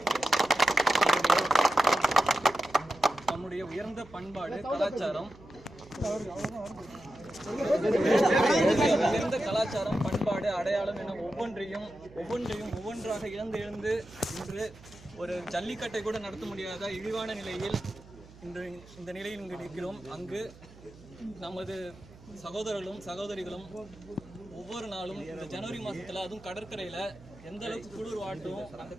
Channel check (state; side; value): noise; right; hum, 21 dB below the sound